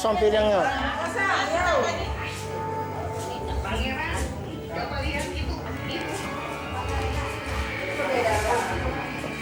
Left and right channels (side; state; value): both; identical; correlation 1.00